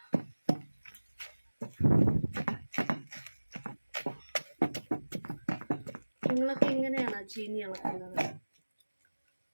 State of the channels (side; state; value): both; inverted; correlation -1.00